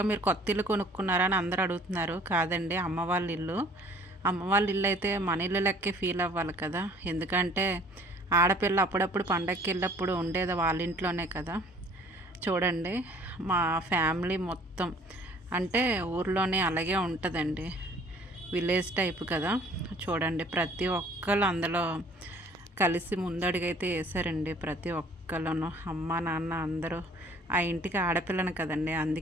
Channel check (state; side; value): normal; both; correlation 0.53